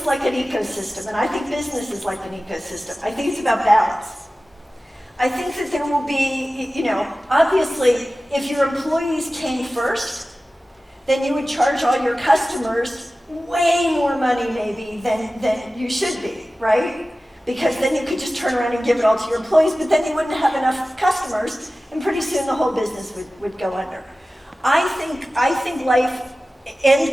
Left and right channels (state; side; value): normal; both; correlation 0.96